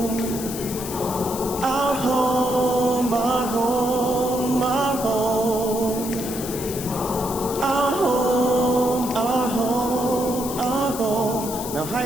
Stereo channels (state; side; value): noise; left; hiss, 9 dB below the sound